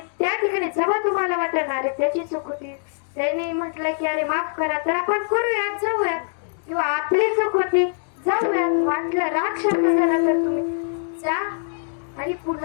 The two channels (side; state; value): right; silent; digital silence